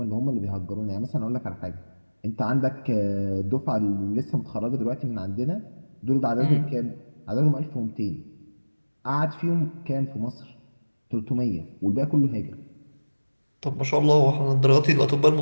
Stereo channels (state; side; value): inverted; both; correlation -1.00